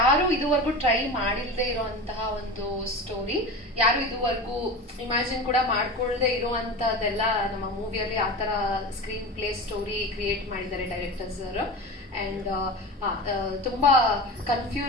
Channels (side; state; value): both; normal; correlation 0.29